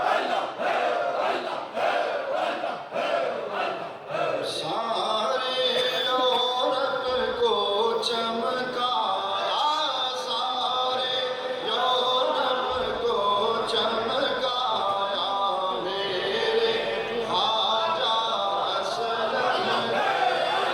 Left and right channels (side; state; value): both; identical; correlation 1.00